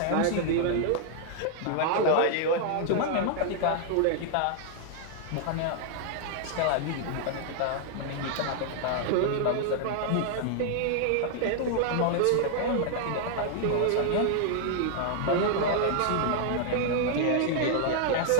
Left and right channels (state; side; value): different; both; correlation 0.00